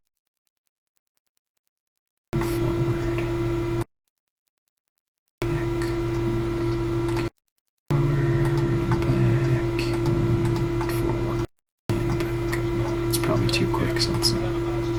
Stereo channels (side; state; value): both; identical; correlation 1.00